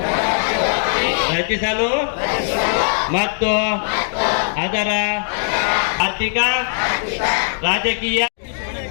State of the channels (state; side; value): silent; right; digital silence